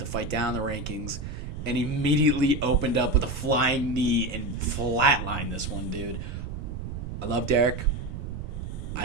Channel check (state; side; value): noise; right; rumble, 7 dB below the sound